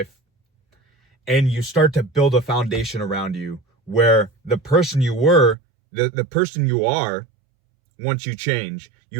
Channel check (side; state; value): left; drops out; at 5.6 s